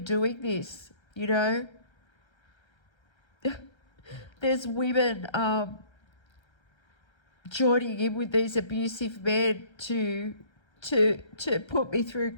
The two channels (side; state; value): right; late; 1.3 ms